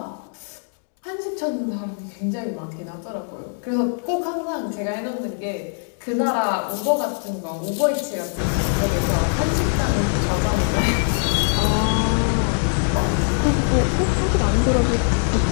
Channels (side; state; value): right; silent; 64 dB below the other